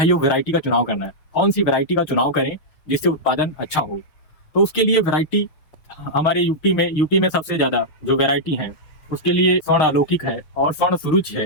वेराइटी का चुनाव करना है। कौन सी वेराइटी का चुनाव करें जिससे उत्पादन अच्छा हो? तो उसके लिए वेराइटी हमारे यूपी में सबसे ज्यादा जो वेराइटी है उसके लिए स्वर्ण अलौकिक है और स्वर्ण सुरुच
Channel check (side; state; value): right; late; 6.4 ms